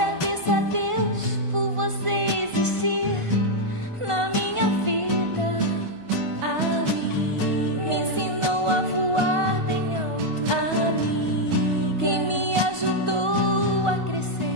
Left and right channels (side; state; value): left; late; 1.4 ms